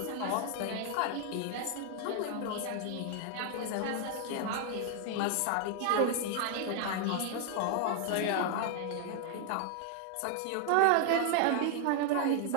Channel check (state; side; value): different; both; correlation 0.00